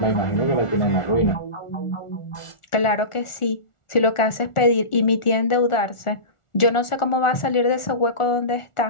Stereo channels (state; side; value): late; right; 1.4 ms